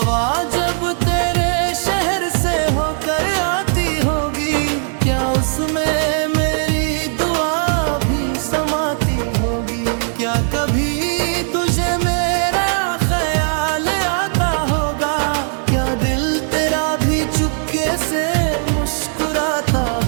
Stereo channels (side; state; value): left; silent; 66 dB below the other